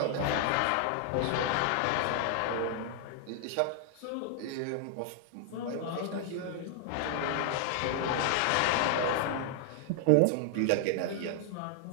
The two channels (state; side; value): different; both; correlation 0.00